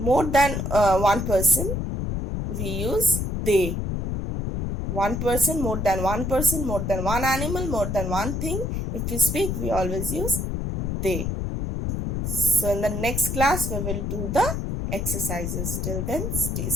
than one person we use they. One person, more than one animal, more than one thing. If we speak, we always use they. So in the next class, we will do the exercises. Till then, stay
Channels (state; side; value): noise; left; rumble, 2 dB below the sound